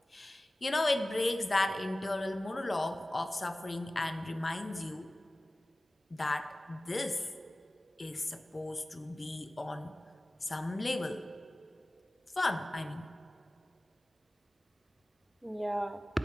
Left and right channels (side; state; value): both; normal; correlation 0.97